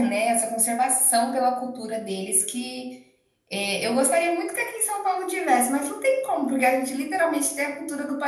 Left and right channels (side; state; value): both; identical; correlation 1.00